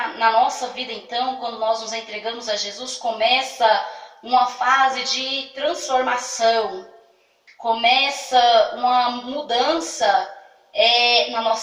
nossa vida, então, quando nós nos entregamos a Jesus, começa uma fase de transformação, começa uma mudança na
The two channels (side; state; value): both; identical; correlation 1.00